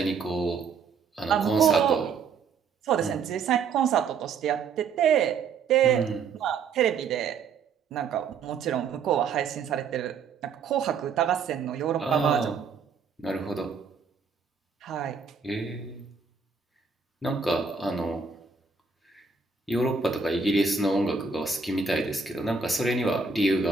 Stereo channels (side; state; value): left; quieter; 5.5 dB